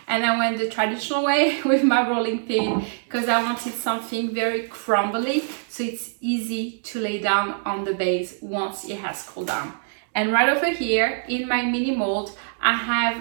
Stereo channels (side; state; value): left; silent; digital silence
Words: and I went the traditional way with my rolling pin, because I wanted something very crumbly, so it's easy to lay down on the base once it has cooled down. And right over here, in my mini mold, I have